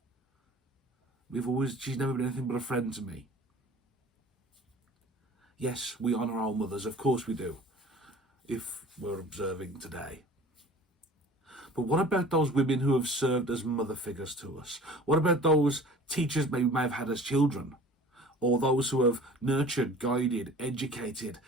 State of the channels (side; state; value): both; normal; correlation 0.45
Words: She's never been anything but a friend to me. Yes, we honour our mothers, of course we do, if we're observing today. But what about those women who have served as mother figures to us? What about those teachers we may have had as children? Or those who have nurtured, guided, educated,